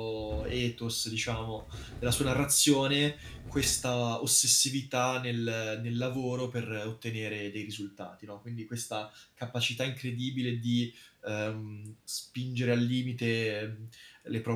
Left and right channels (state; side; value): identical; both; correlation 1.00